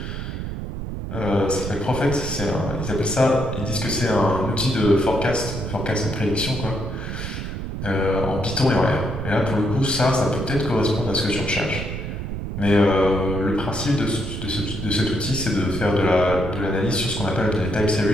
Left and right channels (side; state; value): right; noise; rumble, 6 dB below the sound